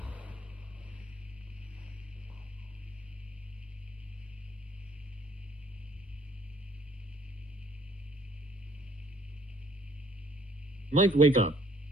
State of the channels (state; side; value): normal; both; correlation 0.61